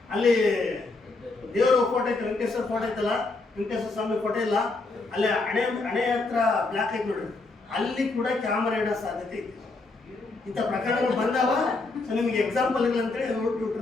ಅಲ್ಲಿ ದೇವರ ಫೋಟೋ ಐತೆ, ವೆಂಕಟೇಶ್ವರ ಫೋಟೋ ಐತಲ್ಲ, ವೆಂಕಟೇಶ್ವರ ಸ್ವಾಮಿ ಫೋಟೋ ಇಲ್ಲ, ಅಲ್ಲಿ ಹಣೆ ಹತ್ರ ಬ್ಲ್ಯಾಕ್ ಐತೆ ನೋಡ್ರಿ, ಅಲ್ಲಿ ಕೂಡ ಕ್ಯಾಮರಾ ಇಡೋ ಸಾಧ್ಯತೆ ಐತೆ. ಇಂಥ ಪ್ರಕರಣಗಳು ಬಂದಾವ. ಸೊ ನಿಮಗೆ ಎಕ್ಸಾಂಪಲ್ ಇಲ್ಲ ಅಂತೇಳಿ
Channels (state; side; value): quieter; right; 3.5 dB